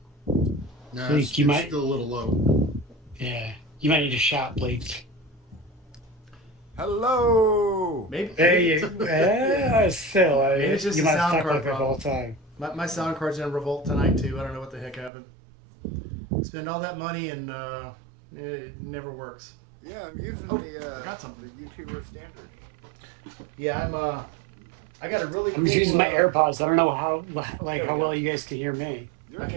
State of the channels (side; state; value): left; drops out; at 15.1 s